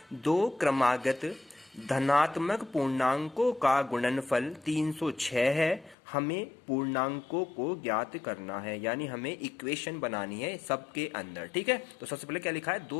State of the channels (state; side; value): drops out; right; at 6.0 s